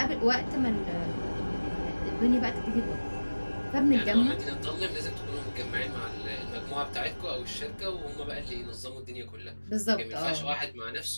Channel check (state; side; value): inverted; both; correlation -1.00